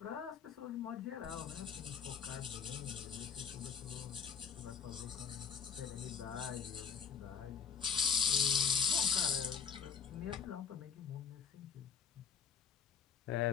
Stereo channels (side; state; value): right; quieter; 6.6 dB